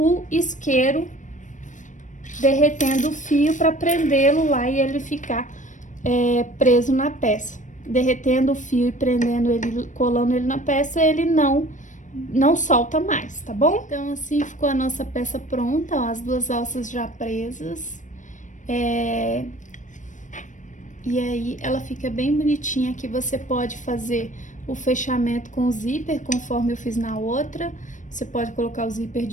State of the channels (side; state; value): right; late; 0.37 ms